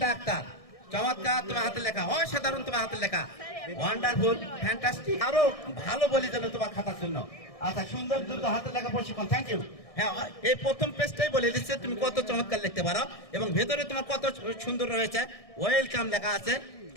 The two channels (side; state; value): right; late; 1.6 ms